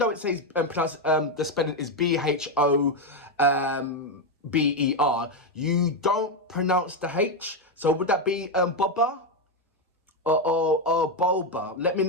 it says the spelling is Bhober, you don't pronounce the H. So would that be Boba or Bhober? Let me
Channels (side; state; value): both; normal; correlation 0.06